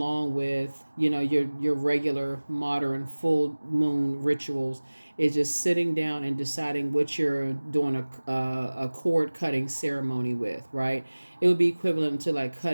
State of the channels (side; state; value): both; inverted; correlation -1.00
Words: with your regular modern full moon rituals. Is just sitting down and deciding what you're doing a cord cutting ceremony with, right? It would be equivalent to like